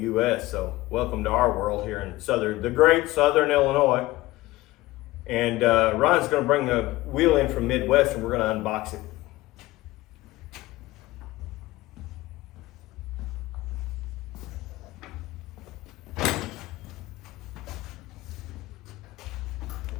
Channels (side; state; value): right; quieter; 18.4 dB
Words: U.S. So welcome to our world here in the great Southern Illinois. And Ryan's going to bring the wheel in from Midwest, and we're going to unbox it.